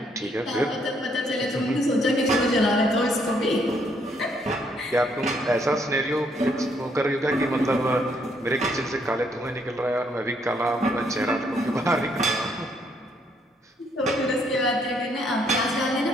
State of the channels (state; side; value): normal; both; correlation 0.70